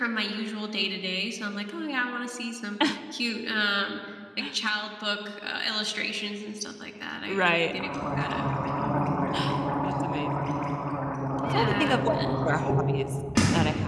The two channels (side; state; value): both; identical; correlation 1.00